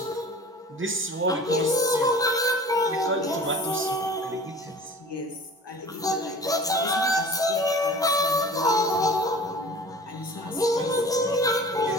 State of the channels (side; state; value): both; normal; correlation 0.42